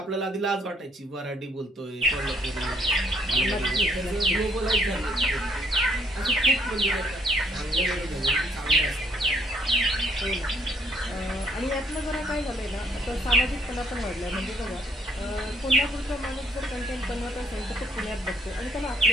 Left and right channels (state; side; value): normal; both; correlation 0.65